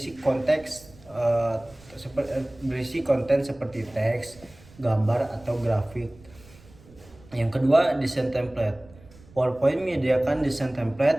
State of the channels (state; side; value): noise; right; rumble, 24 dB below the sound